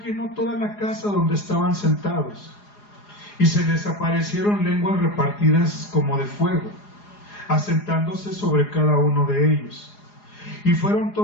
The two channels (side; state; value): right; late; 4.8 ms